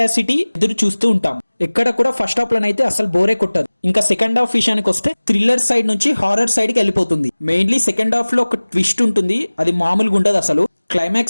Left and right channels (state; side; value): inverted; both; correlation -1.00